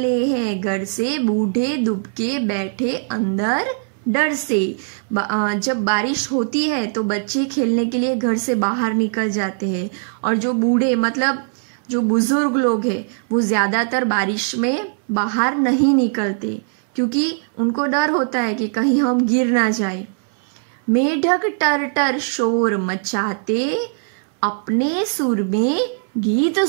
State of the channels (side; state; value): left; silent; 62 dB below the other